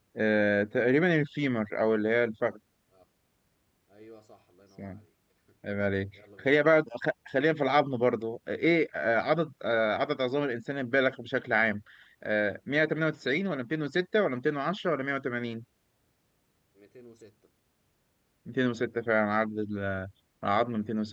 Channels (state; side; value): identical; both; correlation 1.00